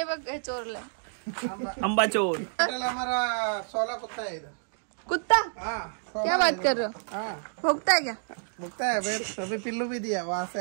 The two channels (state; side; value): silent; left; digital silence